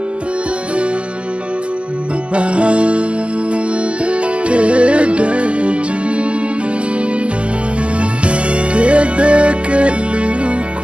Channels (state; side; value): late; left; 0.055 ms